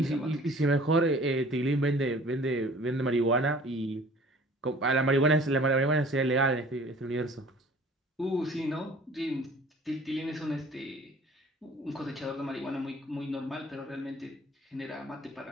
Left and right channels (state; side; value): normal; both; correlation 0.49